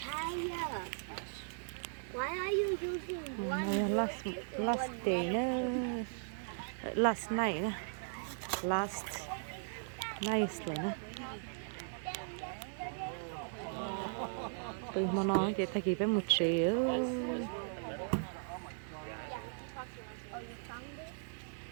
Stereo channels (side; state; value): left; silent; digital silence